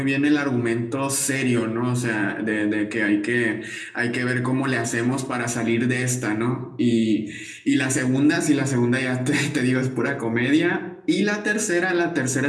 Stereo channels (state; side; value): identical; both; correlation 1.00